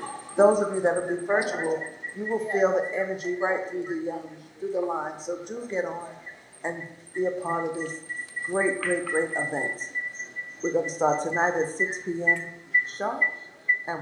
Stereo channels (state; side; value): identical; both; correlation 1.00